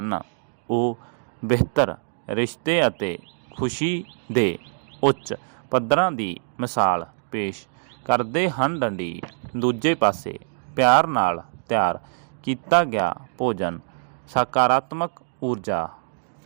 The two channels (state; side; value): silent; left; digital silence